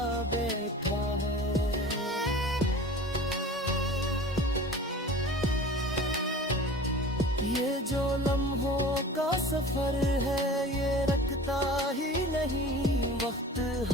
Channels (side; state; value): both; normal; correlation 0.40